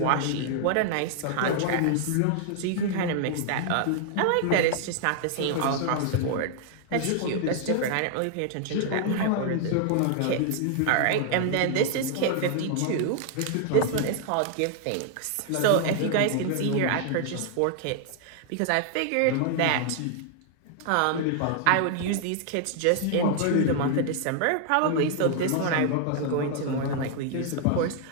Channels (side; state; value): both; different; correlation 0.00